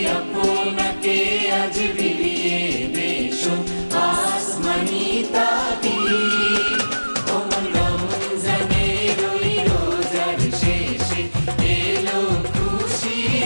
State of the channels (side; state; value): both; inverted; correlation -1.00